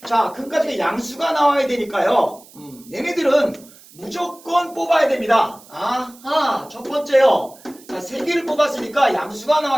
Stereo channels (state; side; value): noise; right; hiss, 23 dB below the sound